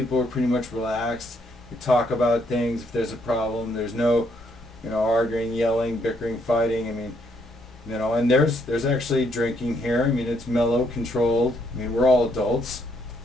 are pretty much relaxed. We talk about things if there's a problem. There's no, you know, arguing, yelling, bickering, fighting. I mean, you know, and there's actually drinking here. I mean, it's mellow, controlled. I mean, we're all adults.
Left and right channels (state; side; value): normal; both; correlation 0.72